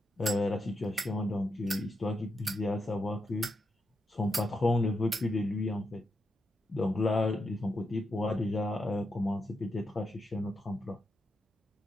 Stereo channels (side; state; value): both; normal; correlation 0.84